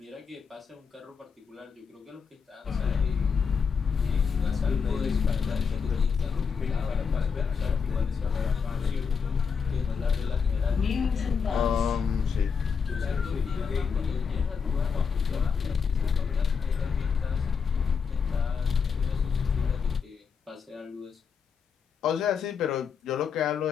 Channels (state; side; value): quieter; right; 6.1 dB